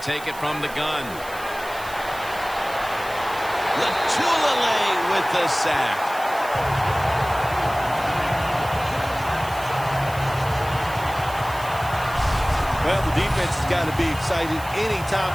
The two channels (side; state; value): right; noise; hiss, 16 dB below the sound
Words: take it from the gun. Latulele with the sack. Well, the defense has got to be excited. Anytime